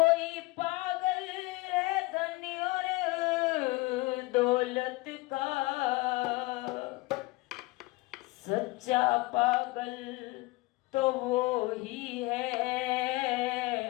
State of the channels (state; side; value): quieter; right; 22.0 dB